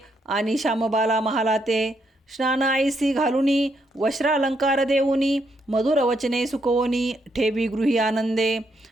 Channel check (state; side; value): normal; both; correlation 0.77